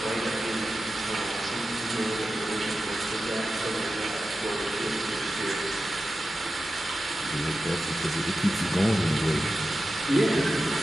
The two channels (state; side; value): normal; both; correlation 0.92